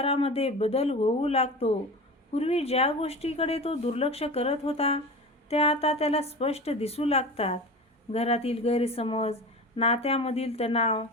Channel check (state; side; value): normal; both; correlation 0.31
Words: बदल होऊ लागतो. पूर्वी ज्या गोष्टीकडे तो दुर्लक्ष करत होता, त्या आता त्याला स्पष्ट दिसू लागतात. घरातील गैरसमज, नात्यामधील तणाव,